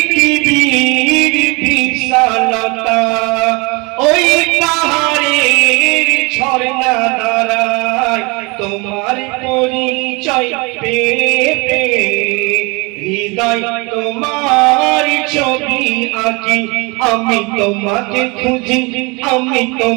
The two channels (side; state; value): left; quieter; 27.8 dB